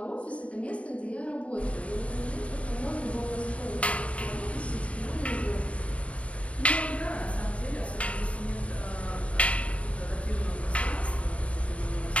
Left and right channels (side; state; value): right; late; 0.064 ms